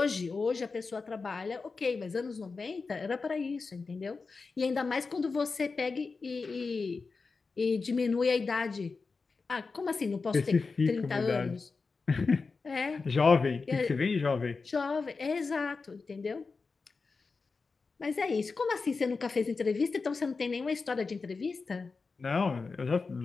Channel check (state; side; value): quieter; right; 4.4 dB